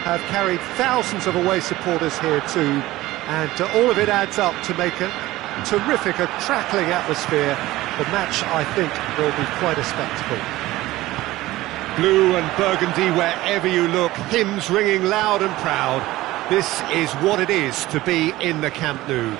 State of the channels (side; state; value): left; quieter; 17.4 dB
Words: have carried thousands of away supporters here too, and all of it adds up to make a terrific, a crackling atmosphere. The match, I think, will be quite a spectacle. Blue and burgundy wherever you look, hymns ringing loud and proud. This is what it is to be in the Camp Nou.